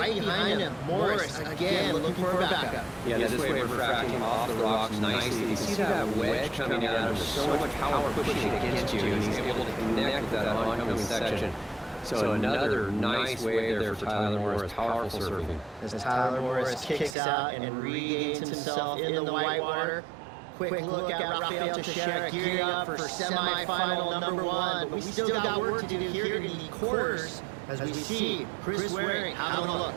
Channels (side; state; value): left; drops out; at 17.2 s